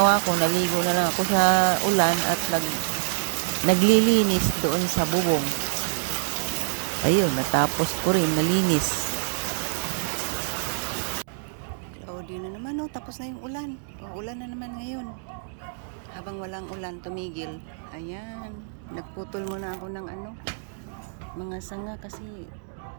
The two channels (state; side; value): silent; left; digital silence